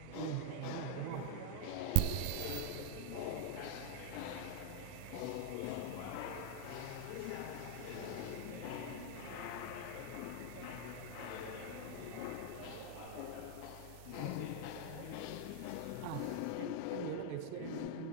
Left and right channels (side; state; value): both; different; correlation 0.00